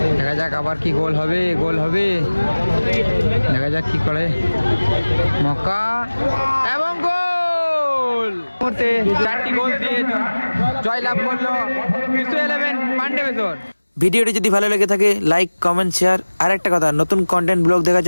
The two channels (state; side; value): inverted; both; correlation -1.00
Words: দেখা যাক আবার কি গোল হবে। গোল হবে, দেখা যাক কি করে। মক্কা এবং গোল! মুহূর্তে 4টি গোল দিয়ে জয়লাভ করলো জিসু 11 পান্ডে বেসর। ভিডিওটি যদি ভালো লেগে থাকে লাইক, কমেন্ট, শেয়ার। আর একটা কথা, নতুন কন্টেন্ট ব্লগ দেখার